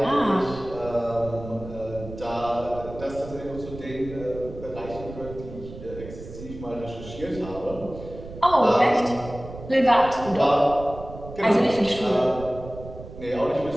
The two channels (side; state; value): right; noise; rumble, 13 dB below the sound